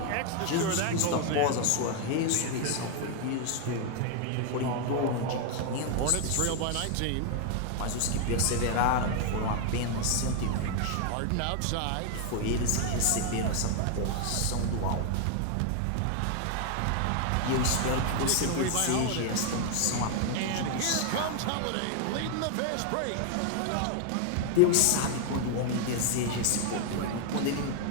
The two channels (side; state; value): both; different; correlation 0.00